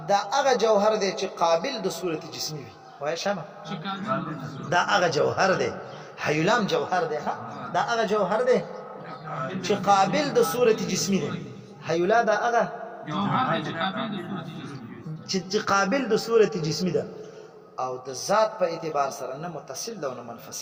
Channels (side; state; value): both; identical; correlation 1.00